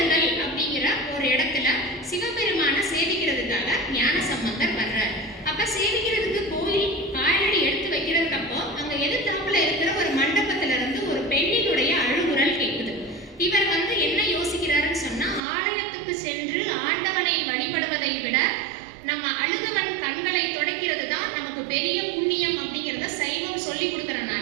அப்படிங்கிற ஒரு இடத்துல சிவபெருமான சேவிக்கிறதுக்காக ஞான சம்பந்தர் வர்றாரு. அப்ப சேவிக்கிறதுக்கு கோயில் காலடி எடுத்து வைக்கிறதுக்கு அப்போ அங்க எதிர்த்தாப்புல இருக்கிற ஒரு மண்டபத்துல இருந்து ஒரு பெண்ணினுடைய அழுகுரல் கேட்குது. இவர் என்ன யோசிக்கிறாருன்னு சொன்னா ஆலயத்துக்கு சென்று ஆண்டவனை வழிபடுவதை விட நம்ம அழுதவன் கண்களை துடைக்கிறது தான் நமக்கு பெரிய புண்ணியம் அப்படிங்கிறத சைவம் சொல்லி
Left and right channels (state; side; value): drops out; left; at 15.4 s